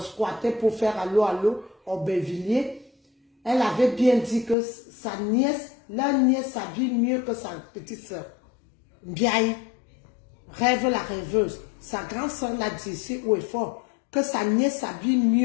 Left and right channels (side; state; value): right; drops out; at 4.5 s